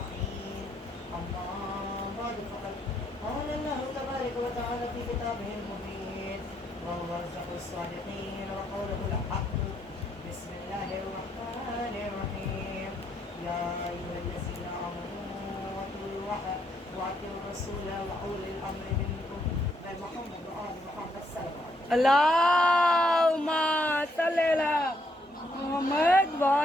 أما بعد فقد قال الله تبارك وتعالى في كتابه المبين وهو أصدق الصادقين وقوله الحق. بسم الله الرحمن الرحيم. يا أيها الذين آمنوا أطيعوا الله وأطيعوا الرسول وأولي الأمر منكم محمد وآل محمد صلى الله عليه وسلم. اللهم صل على محمد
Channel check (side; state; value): both; normal; correlation 0.74